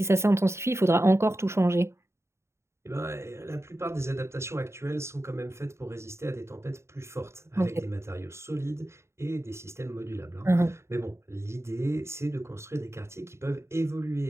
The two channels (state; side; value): late; left; 0.13 ms